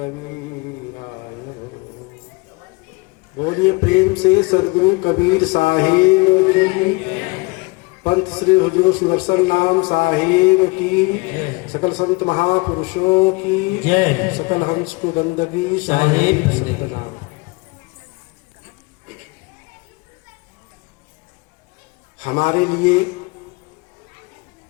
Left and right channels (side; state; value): right; quieter; 26.5 dB